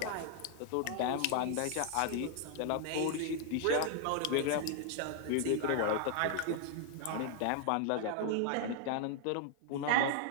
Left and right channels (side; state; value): both; different; correlation 0.00